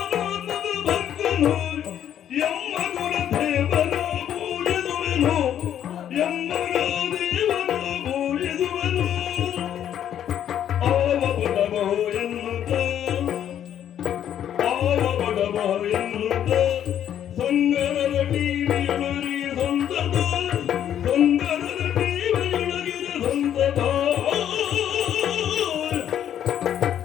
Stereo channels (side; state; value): right; quieter; 10.2 dB